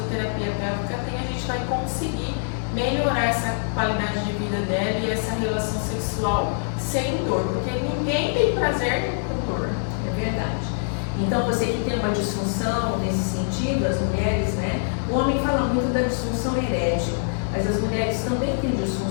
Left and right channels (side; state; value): right; silent; 61 dB below the other